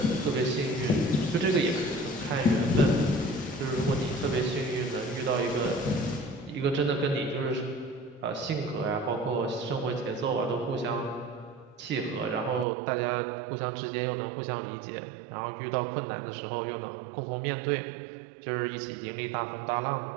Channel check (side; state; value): left; drops out; at 12.7 s